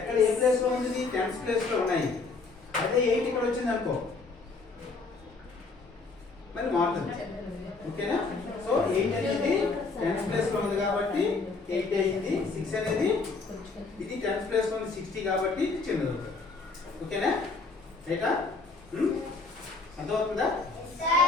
ఏ ప్లేస్లో ఉంది? 10th ప్లేస్లో ఉన్నాయి. అదే 8 ఇక్కడ వచ్చింది అనుకో, మరి మారుతుంది. ఓకేనా? సో 8 అనేది 10th ప్లేస్లో ఉంది కాబట్టి 8 అయింది. 6 అనేది ఇది 10th ప్లేస్లో ఉంది 60 కాబట్టి ఇది చిన్నది అవుతుంది. ఓకేనా? రైటా? అర్థమవుతుందా? 84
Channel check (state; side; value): quieter; right; 4.0 dB